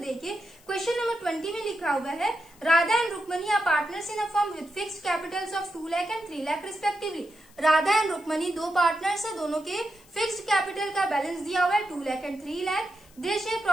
देखिए क्वेश्चन नंबर 20 में लिखा हुआ है, Radha and Rukmani are partners in a firm with fixed capitals of 2 lakh and 3 lakh respectively. Radha and Rukmani दो पार्टनर्स है, दोनों के फिक्स्ड कैपिटल का बैलेंस दिया हुआ है 2 lakh and 3 lakh. They share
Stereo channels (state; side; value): noise; left; hiss, 27 dB below the sound